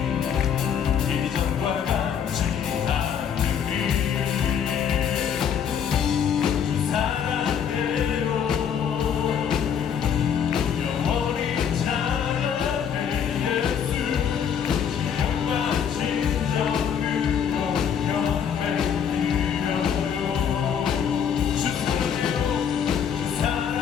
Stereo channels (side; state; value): right; quieter; 8.0 dB